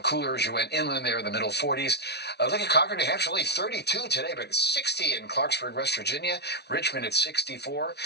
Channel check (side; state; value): right; late; 0.49 ms